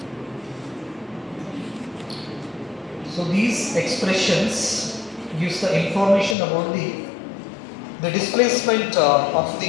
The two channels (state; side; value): drops out; right; at 6.4 s